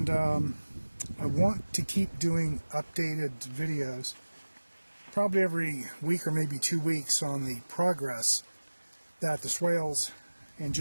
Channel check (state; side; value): inverted; both; correlation -1.00